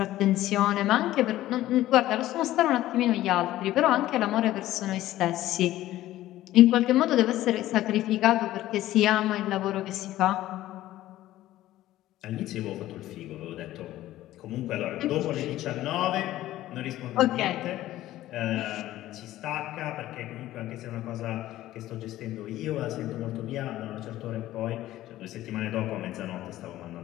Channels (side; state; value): right; quieter; 14.8 dB